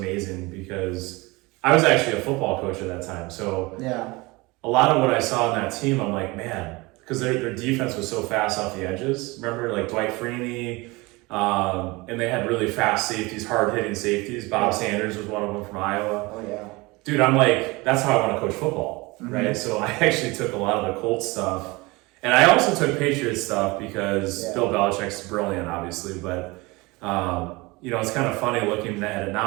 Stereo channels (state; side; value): quieter; left; 23.6 dB